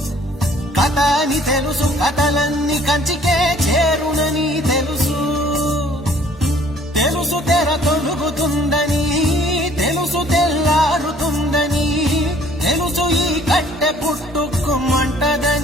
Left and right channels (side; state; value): both; normal; correlation 0.57